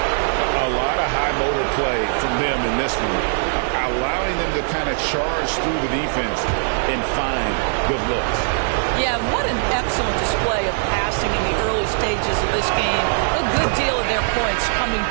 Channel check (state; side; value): silent; left; digital silence